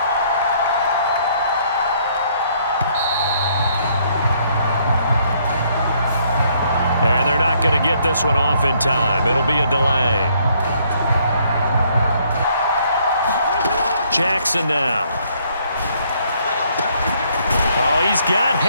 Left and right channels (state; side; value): inverted; both; correlation -0.67